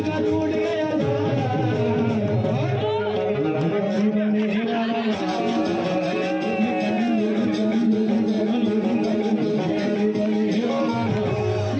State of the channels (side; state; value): both; identical; correlation 1.00